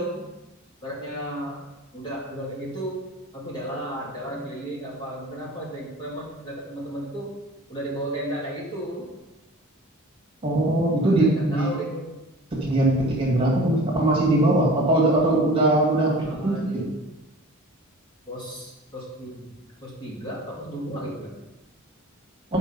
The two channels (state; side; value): normal; both; correlation 0.42